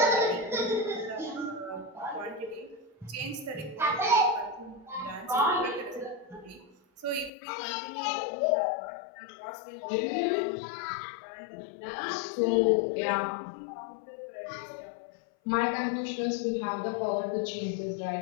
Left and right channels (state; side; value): drops out; right; at 7.3 s